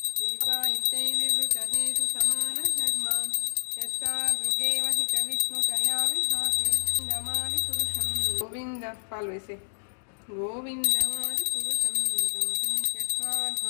दीपायिते विवृतहेतुसमानधर्मा यस्तादृगेव हि च विष्णुतया विभाति गोविन्दमादिपुरुषं गोविन्द पाल्वेसे गोविन्दमादिपुरुषं तमहं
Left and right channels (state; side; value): silent; right; digital silence